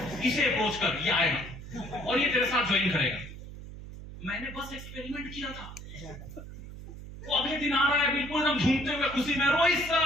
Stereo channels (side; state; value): right; noise; hum, 13 dB below the sound